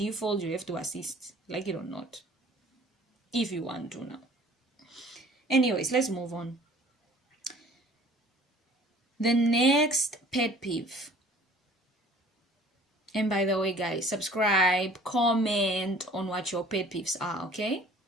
you have to assist, like it or not, if you want to now. Anyways, let's move on. The next pet peeve. And by the way, guys, subscribe, comment on what your pet peeves are, okay?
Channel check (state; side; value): normal; both; correlation 0.50